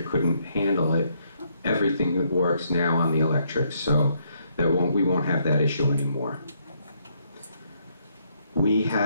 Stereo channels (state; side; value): inverted; both; correlation -0.72